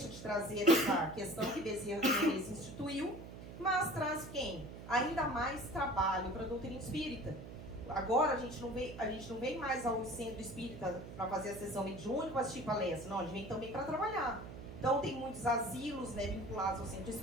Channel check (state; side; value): noise; right; hum, 12 dB below the sound